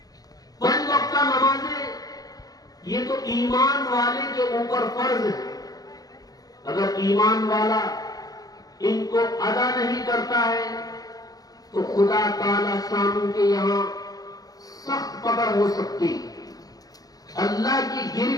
5 وقتہ نمازیں یہ تو ایمان والے کے اوپر فرض ہے۔ اگر ایمان والا ان کو ادا نہیں کرتا ہے تو خدا تعالی شانہ کے یہاں سخت پکڑ ہو سکتی، اللہ کی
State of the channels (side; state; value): right; late; 0.18 ms